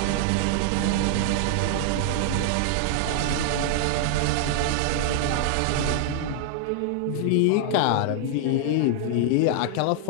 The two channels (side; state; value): both; different; correlation 0.00